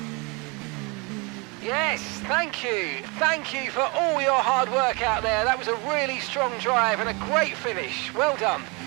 Yes, thank you. Thank you for all your hard work out there. That was a really strong drive and a great finish. Well done.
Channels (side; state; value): left; quieter; 29.2 dB